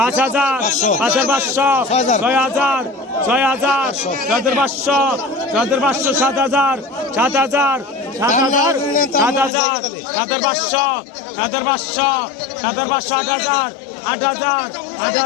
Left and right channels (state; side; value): drops out; right; at 9.5 s